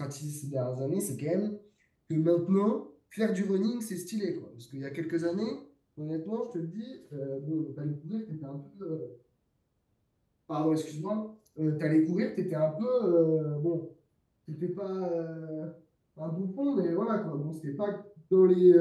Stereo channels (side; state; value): both; identical; correlation 1.00